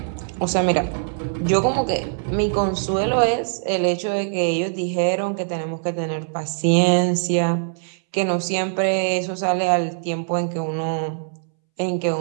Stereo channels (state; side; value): silent; left; 64 dB below the other